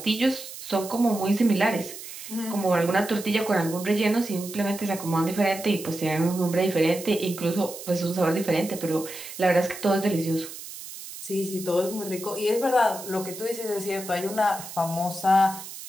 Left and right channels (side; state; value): right; noise; hiss, 12 dB below the sound